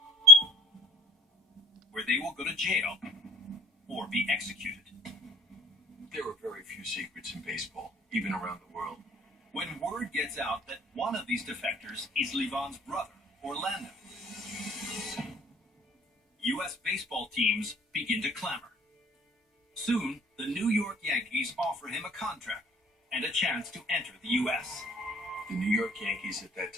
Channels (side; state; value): both; normal; correlation 0.50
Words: where they will go to jail or be executed. There are very few secrets in baseball, even around the world. When word gets out that one of these defectors is Levon's brother, Orlando, U.S. baseball teams begin to clamor. Soon, the New York Yankees offer him a contract and a chance to enter the U.S. The New York Yankees at that